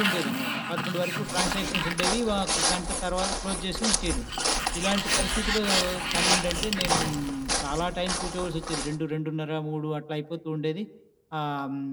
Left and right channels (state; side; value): identical; both; correlation 1.00